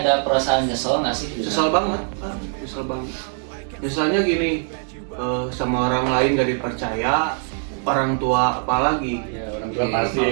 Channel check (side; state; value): left; silent; 60 dB below the other